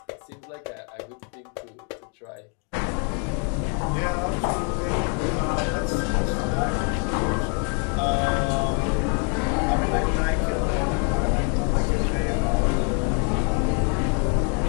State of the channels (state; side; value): quieter; right; 39.9 dB